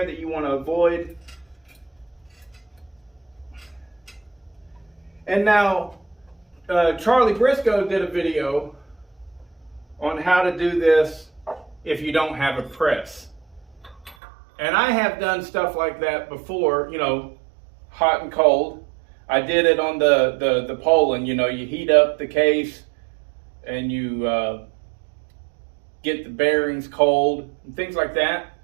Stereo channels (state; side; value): drops out; left; at 14.2 s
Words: that you want to avoid. And now, Charlie Briscoe did a video on how to do this if you don't have a press. And I have done stuff like that before, you know, hot and cold. I did it on the Poland, you know, you heat up the case and you get the bearings cold and things like that.